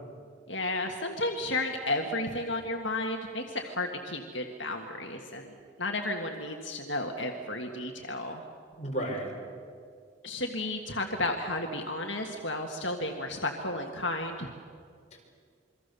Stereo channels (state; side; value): normal; both; correlation -0.07